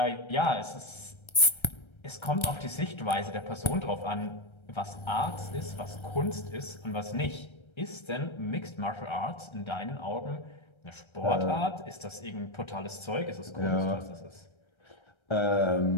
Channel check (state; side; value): late; right; 1.3 ms